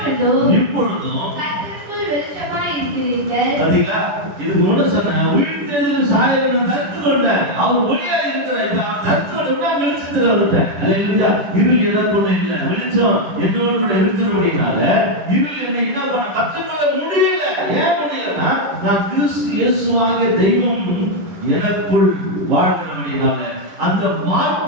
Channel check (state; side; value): late; left; 10 ms